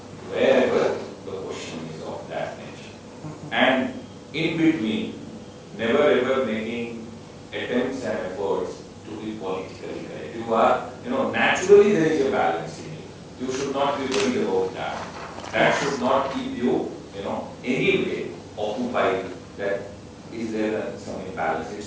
wherever the question is of that nature, and in between, never ever making attempts and efforts to be politically correct. You are, naturally there is a balance in you. You should not be worried about that. That should not keep you, anyway occupied. That is there some imbalance.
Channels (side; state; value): both; identical; correlation 1.00